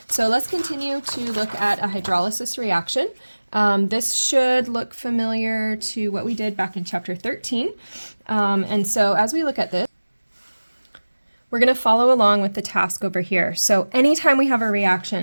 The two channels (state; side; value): inverted; both; correlation -1.00